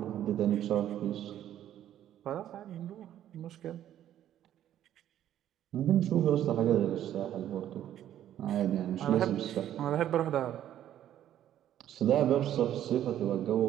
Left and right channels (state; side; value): quieter; left; 11.5 dB